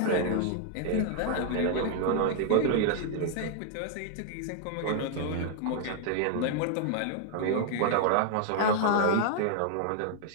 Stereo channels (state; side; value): different; both; correlation -0.01